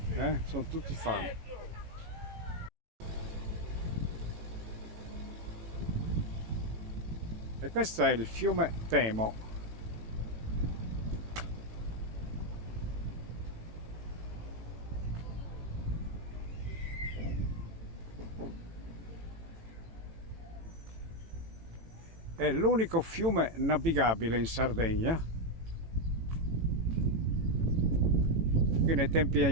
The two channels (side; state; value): left; late; 18 ms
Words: Sono tutti fan. E questo è il fiume Temo. È l'unico fiume navigabile in Sardegna. Qui nei